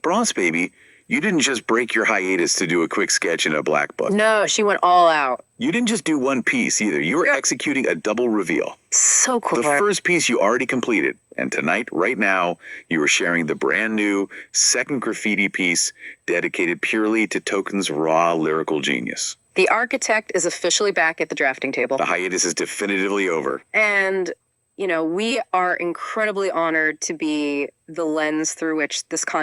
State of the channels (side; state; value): both; identical; correlation 1.00